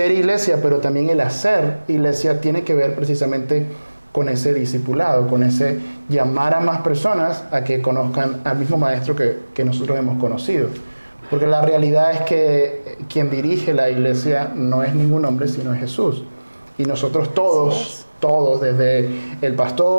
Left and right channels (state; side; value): inverted; both; correlation -1.00